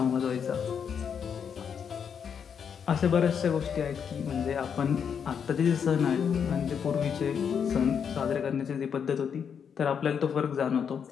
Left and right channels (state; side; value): quieter; right; 7.3 dB